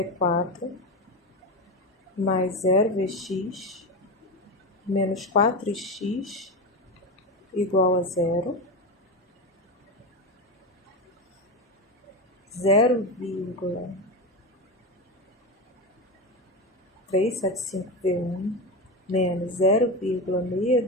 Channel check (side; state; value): both; normal; correlation 0.18